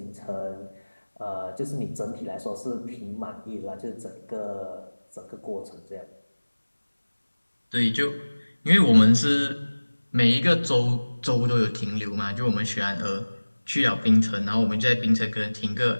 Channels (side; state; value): both; inverted; correlation -1.00